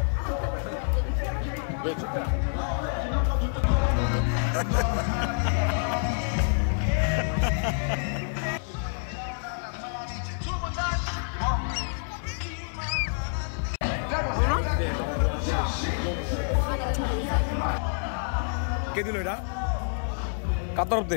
কে দিল এটা? কার তরফ দে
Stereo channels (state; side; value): silent; right; 58 dB below the other